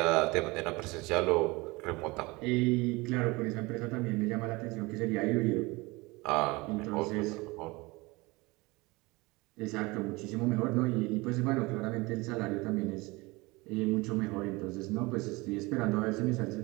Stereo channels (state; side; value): quieter; left; 23.7 dB